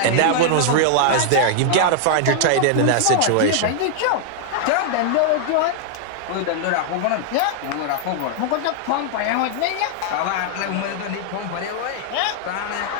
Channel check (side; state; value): both; different; correlation -0.01